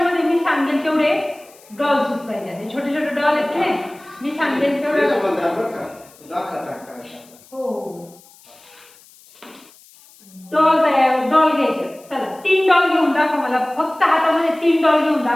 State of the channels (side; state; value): left; noise; hiss, 26 dB below the sound